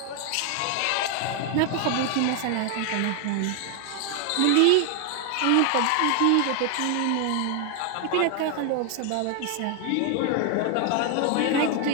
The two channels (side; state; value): both; different; correlation 0.00